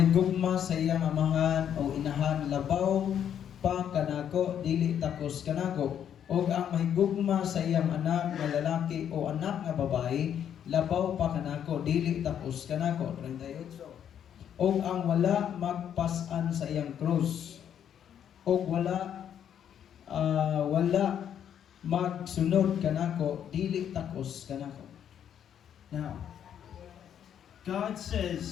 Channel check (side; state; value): right; quieter; 9.2 dB